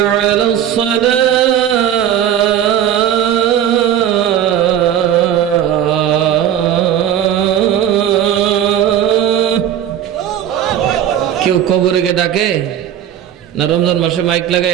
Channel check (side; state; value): left; quieter; 10.3 dB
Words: अला सलाह। क्यों कब्र के डाके ना रमजान मासे माइक